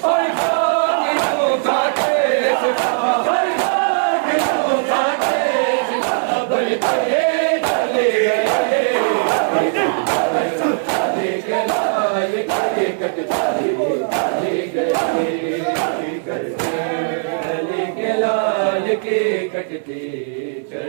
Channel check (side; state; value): left; silent; digital silence